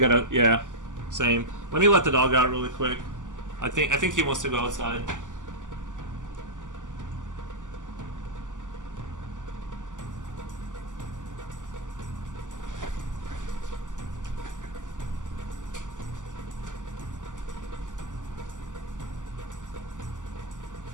yeah, same. Let me let the dog out really quick. I think he wants to go outside.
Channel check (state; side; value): late; left; 0.87 ms